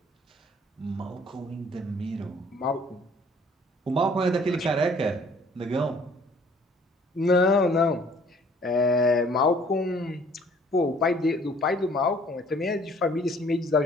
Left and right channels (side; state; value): both; normal; correlation 0.57